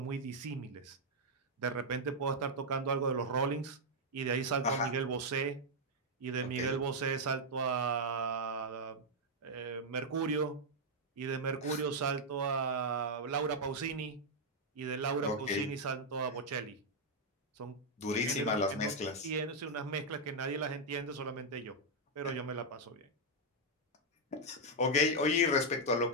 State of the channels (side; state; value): both; normal; correlation -0.03